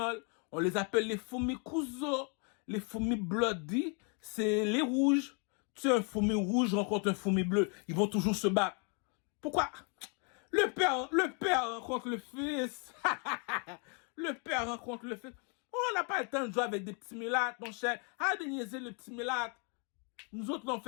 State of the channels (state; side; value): quieter; right; 37.3 dB